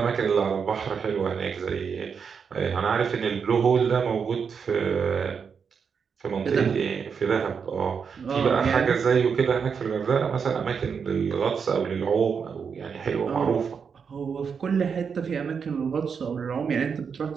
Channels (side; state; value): left; quieter; 6.3 dB